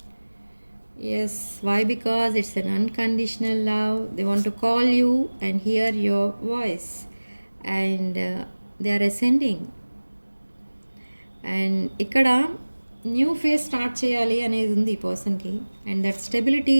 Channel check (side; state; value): both; inverted; correlation -1.00